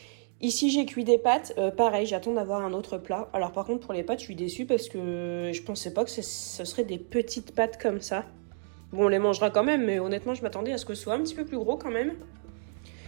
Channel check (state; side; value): silent; left; 58 dB below the other